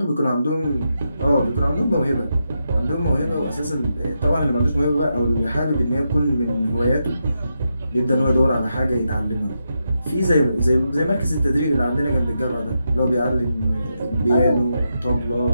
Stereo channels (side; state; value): both; inverted; correlation -0.85